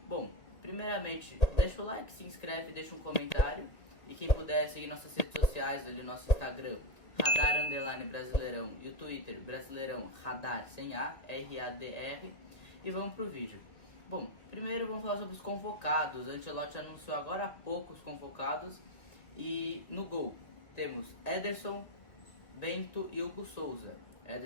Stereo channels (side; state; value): right; late; 1.8 ms